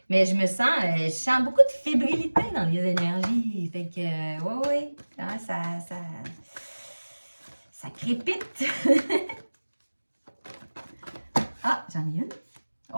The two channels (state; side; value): inverted; both; correlation -1.00